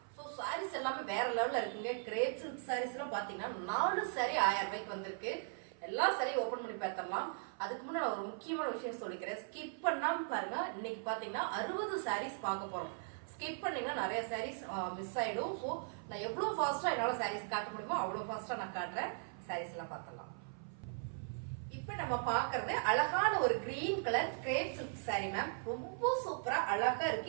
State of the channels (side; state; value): left; silent; 52 dB below the other